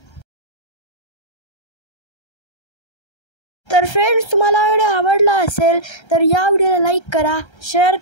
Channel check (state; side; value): late; right; 1.3 ms